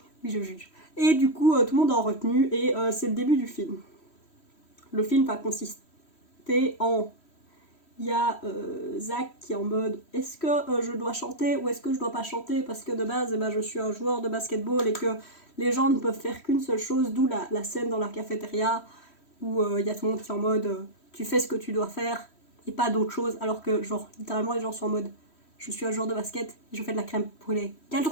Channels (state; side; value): late; right; 3.1 ms